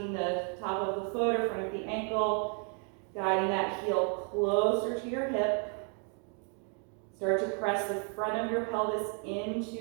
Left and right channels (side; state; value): left; quieter; 38.8 dB